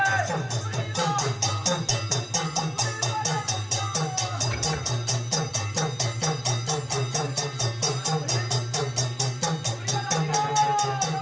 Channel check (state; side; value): identical; both; correlation 1.00